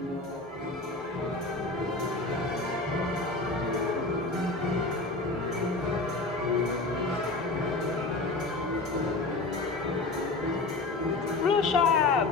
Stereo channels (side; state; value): right; quieter; 3.4 dB